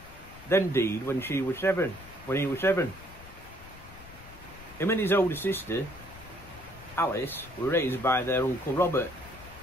then died when she was 7. When he was 7. Him and his older sister, Alice, were raised by their uncle Robert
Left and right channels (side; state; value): left; noise; rumble, 18 dB below the sound